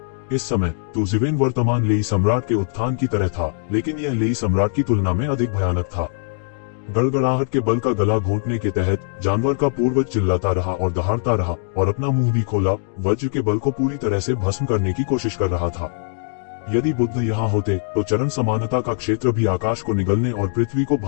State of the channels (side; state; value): right; silent; digital silence